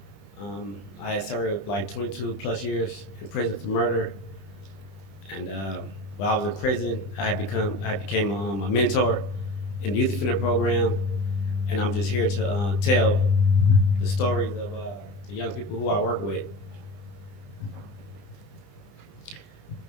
I had served like 22 plus years in prison for murder. And while I was in prison, I became a mentor in the youth offender program. And I'm just here to tell the stories of the young people who I work with.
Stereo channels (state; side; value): late; right; 20 ms